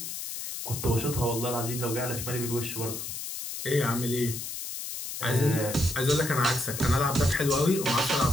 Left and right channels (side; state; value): left; noise; hiss, 7 dB below the sound